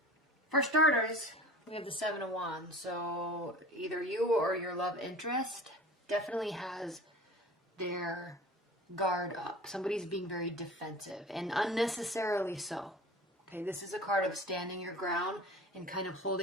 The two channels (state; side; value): normal; both; correlation 0.40